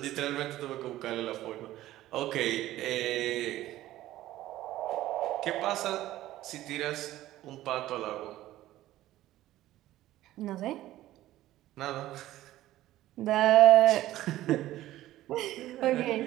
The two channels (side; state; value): left; quieter; 14.9 dB